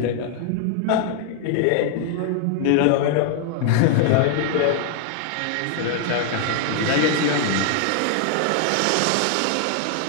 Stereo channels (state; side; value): different; both; correlation 0.00